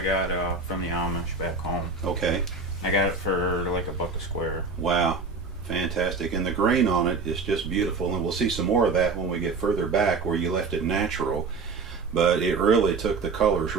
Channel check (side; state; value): left; quieter; 4.3 dB